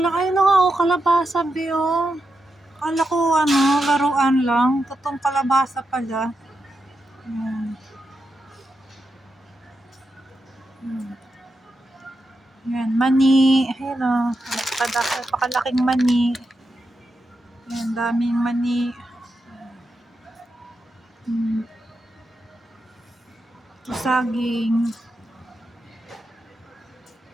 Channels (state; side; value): normal; both; correlation 0.87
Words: na nga, oh, kalabasa, be, oh. Kala ko, ano, laruan lang. Totoong kalabasa pala. Ayan. Ayan, mani. Ayan, oh. Napakalaking mani. Ayan, daming mani. Saging.